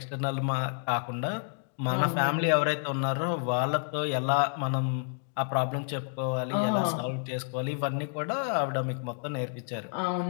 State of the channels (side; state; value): right; silent; digital silence